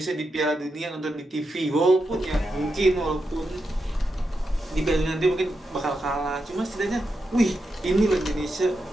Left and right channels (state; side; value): normal; both; correlation 0.86